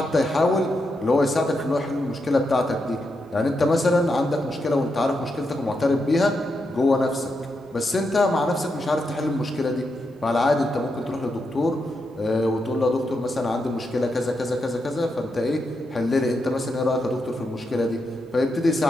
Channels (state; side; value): normal; both; correlation 0.84